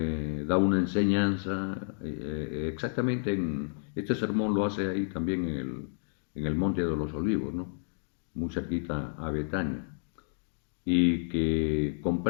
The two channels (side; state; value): right; silent; digital silence